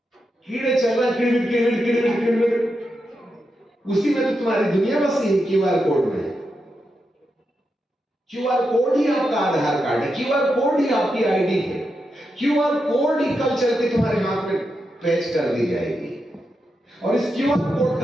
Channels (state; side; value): normal; both; correlation 0.86